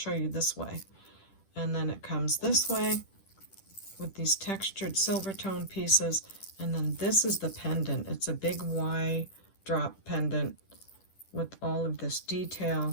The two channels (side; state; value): right; late; 10 ms